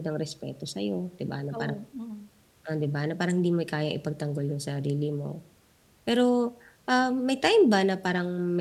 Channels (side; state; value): both; identical; correlation 1.00